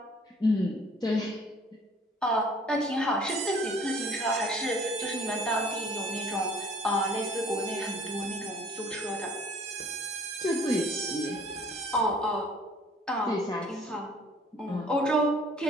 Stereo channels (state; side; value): normal; both; correlation 0.53